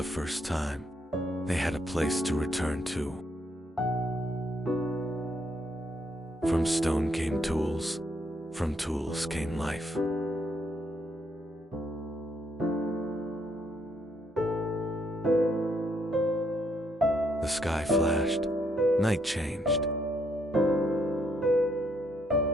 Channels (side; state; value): both; normal; correlation 0.73